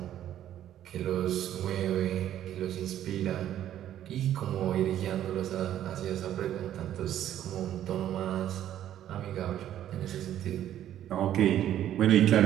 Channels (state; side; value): quieter; left; 11.5 dB